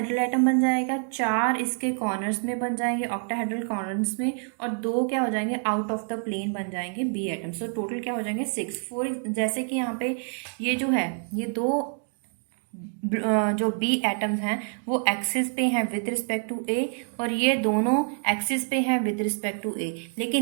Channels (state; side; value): silent; left; 55 dB below the other